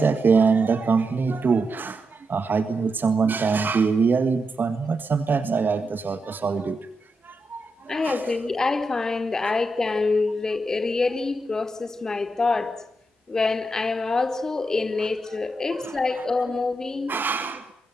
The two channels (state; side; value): normal; both; correlation 0.85